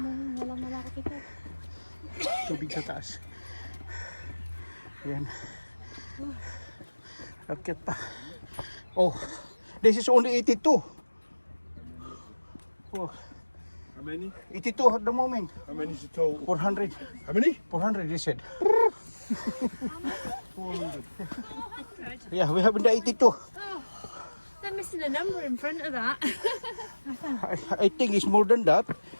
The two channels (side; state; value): both; inverted; correlation -1.00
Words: Tubig sa taas. Ayan. Akit pa. Oh, this is only 82. Oh, How many? 82 at the moment. How many is the total? 400. How many? 400 they said. Yeah, we have the 82. They're missing a number in front of that. I think it's more than that.